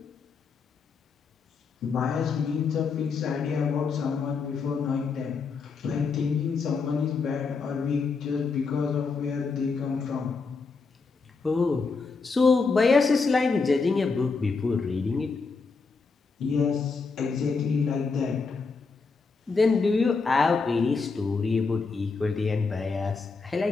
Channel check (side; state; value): right; quieter; 4.6 dB